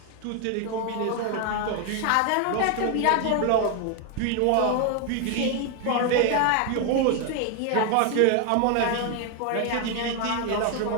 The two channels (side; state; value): both; different; correlation 0.01